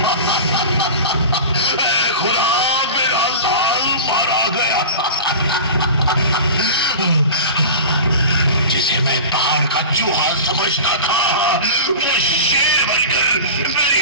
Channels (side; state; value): both; inverted; correlation -0.32